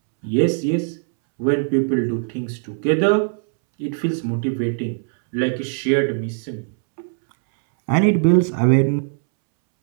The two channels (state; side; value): silent; left; 65 dB below the other